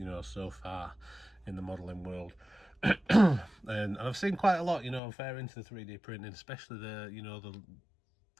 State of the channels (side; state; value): right; drops out; at 5.0 s